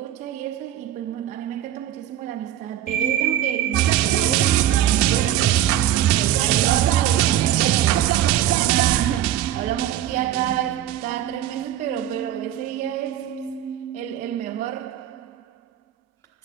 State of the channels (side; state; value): left; quieter; 11.9 dB